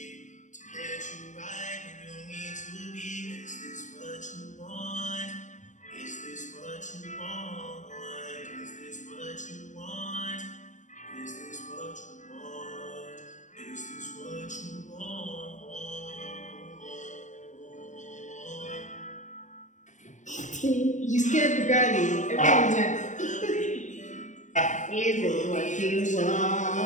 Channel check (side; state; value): right; late; 0.35 ms